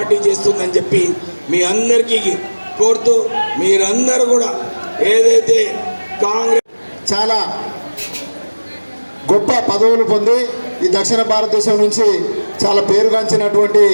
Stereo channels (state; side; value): inverted; both; correlation -1.00